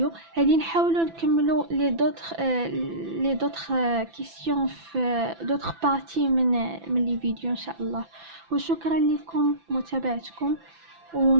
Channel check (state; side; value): late; left; 5.9 ms